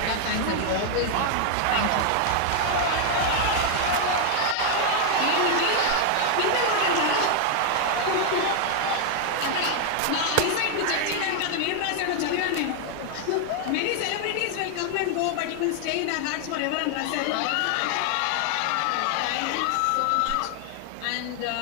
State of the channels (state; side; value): different; both; correlation 0.00